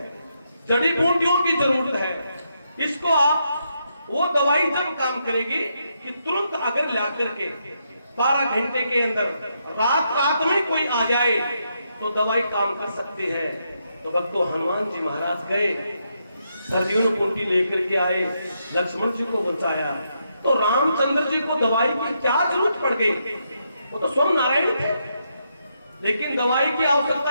जड़ी बूटियों की जरूरत है। इसको आप वो दवाई जब काम करेगी कि तुरंत अगर ला करके 12 घंटे के अंदर रात में कोई आ जाए तो दवाई काम कर सकती है। तो भक्तों हनुमान जी महाराज गए, सरजून कुंटी लेकर के आए, लक्ष्मण जी को बचाया। तो रामचंद्र जी को दवाई की क्या जरूरत पड़ गई? वो तो स्वयं नारायण थे, लेकिन दवाई की आवश्यकता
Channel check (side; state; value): both; inverted; correlation -0.80